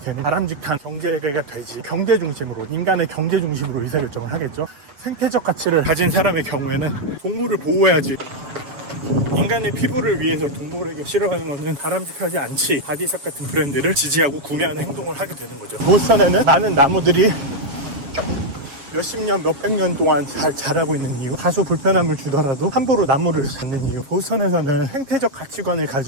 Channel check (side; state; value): left; late; 7.2 ms